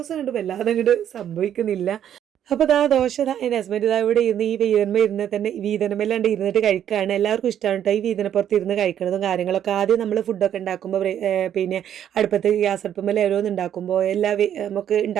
കണ്ട് വല്ലാതെ അങ്ങോട്ട് സംഭവിക്കുന്നില്ല. അപ്പോൾ ദോശ എൻ്റെ ഹസ്ബൻഡ് ഇവിടെ ഇരുന്ന് ഈ ഇരുന്ന് തന്നെ വീതനമെല്ലാണ്ട് ഇരുന്നിട്ട് കഴിക്കുകയാണ്. എല്ലാവർക്കും ഇഷ്ടമാണ് കേട്ടോ ഈ വീതനപ്പുറത്ത് ഇരുന്ന് കഴിക്കുന്നതും കാര്യങ്ങളൊക്കെ. ആദ്യം നമ്മൾ ഫുഡൊക്കെ ഉണ്ടാക്കുമ്പോൾ പിന്നെ അടുപ്പത്ത് ഗ്യാസ് അടുപ്പുമ്പോൾ ഓരോന്ന് ഉണ്ടാക്കുമ്പോൾ നമുക്ക്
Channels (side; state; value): left; quieter; 10.0 dB